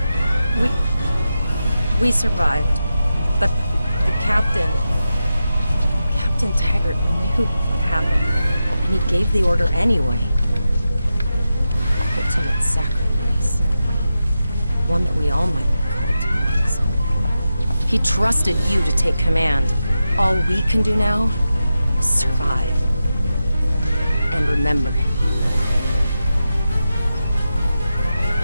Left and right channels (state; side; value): inverted; both; correlation -0.91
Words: We survived, but the Captain Taggart knew what happened, and he gave the order anyway. Ultimate sacrifice. One that we all might be called to make someday. He trusted you to take command. All we can do now is survive. And remember him.